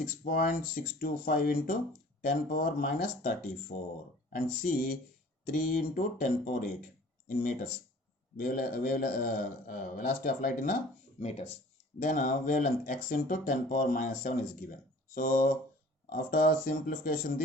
into 10 power minus 34, and C 3 into 10 power 8 in meters, velocity of light in meters. Then wavelength x into 10 power minus 7 is given. So after simplification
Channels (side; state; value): both; normal; correlation 0.49